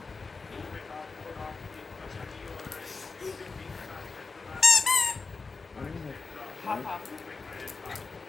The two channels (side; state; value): right; quieter; 4.3 dB